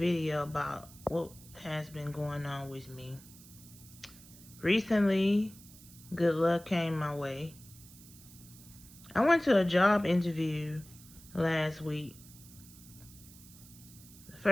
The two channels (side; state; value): right; noise; hiss, 20 dB below the sound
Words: about what has been going on with me. Recently, good luck came my way. I went to a job interview last week. The